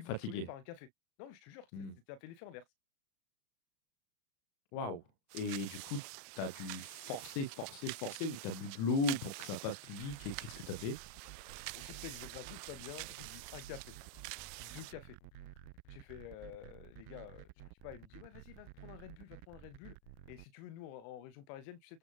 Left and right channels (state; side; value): late; right; 36 ms